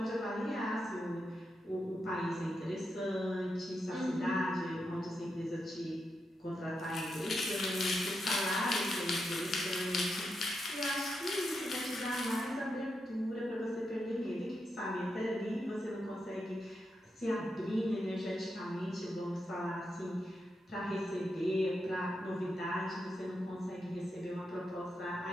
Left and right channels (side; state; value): both; normal; correlation 0.85